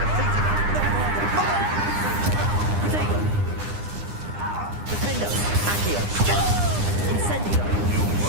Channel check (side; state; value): left; late; 9.8 ms